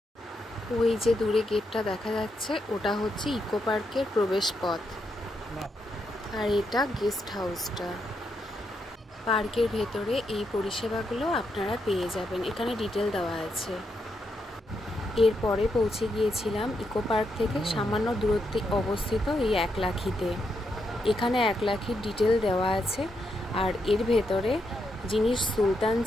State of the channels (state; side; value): normal; both; correlation 0.81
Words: ওই যে দূরে গেটটা দেখা যাচ্ছে ওটা হচ্ছে ইকো পার্কের প্রবেশ পথ, আর এটা গেস্ট হাউসটা। পার্কের ভেতরে এই পরিষেবাগুলো আপনারা পেয়ে যাবেন, এখানে ডিটেল দেওয়া আছে। এরপরে পৌঁছে গিয়েছিলাম ইকো পার্ক থেকে সামান্য দূরত্বে অবস্থিত এই একলাখিতে। এখানে একলাখির ডিটেল দেওয়া আছে। আর এর ভেতরে যিনি সুলতান